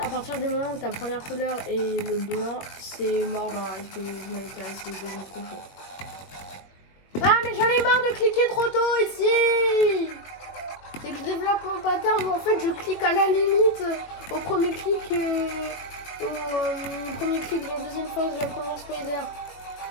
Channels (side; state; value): right; late; 21 ms